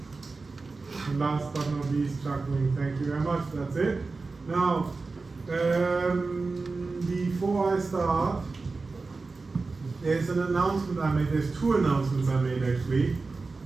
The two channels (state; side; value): quieter; left; 3.9 dB